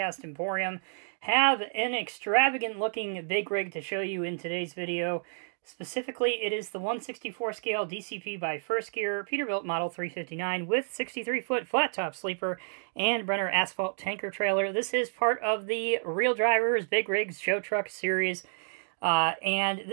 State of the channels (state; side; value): silent; left; digital silence